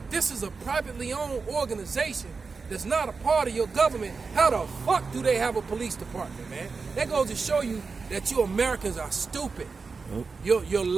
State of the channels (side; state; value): left; quieter; 4.7 dB